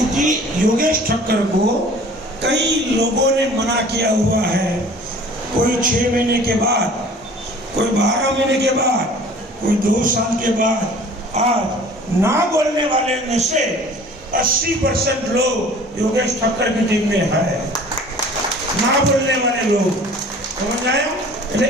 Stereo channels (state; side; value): normal; both; correlation 0.47